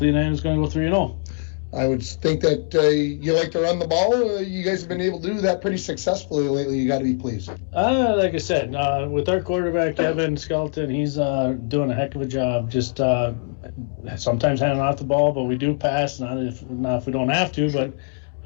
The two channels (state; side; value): silent; right; 62 dB below the other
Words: the night is going to go 3-0. I would think that you like to run the ball. You guys have been able to do that pretty successfully lately. You got to be pleased. Like I said, with our quarterback, Evan Skelton, he's doing a heck of a job. Just sometimes handing off the ball, but we do pass, not if we don't have to. But